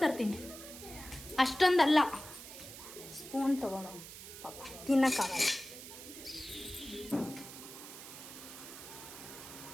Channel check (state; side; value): noise; right; hiss, 13 dB below the sound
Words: ತರ್ತೀನಿ. ಅಷ್ಟೊಂದಲ್ಲ, ಸ್ಪೂನ್ ತಗೊಳ್ಳೋ ಪಾಪ ತಿನ್ನಕ್ಕಾಗಲ್ಲ.